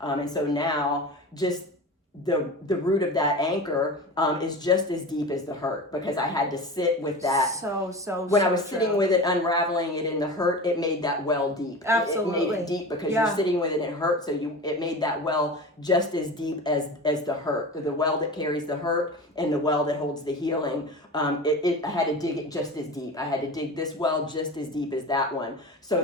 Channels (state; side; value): normal; both; correlation 0.31